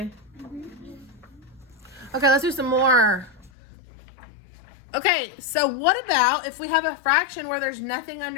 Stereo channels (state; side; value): drops out; right; at 3.5 s